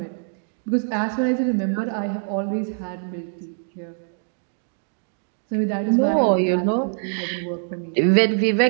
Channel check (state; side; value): silent; left; digital silence